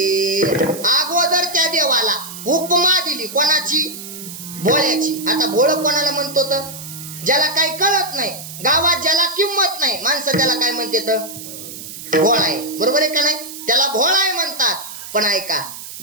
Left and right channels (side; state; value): right; noise; hiss, 12 dB below the sound